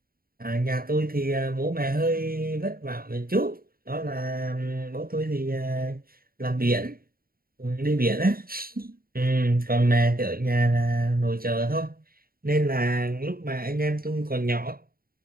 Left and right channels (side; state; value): left; late; 0.43 ms